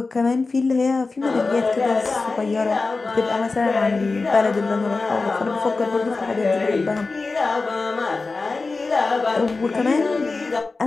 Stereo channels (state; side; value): quieter; right; 3.8 dB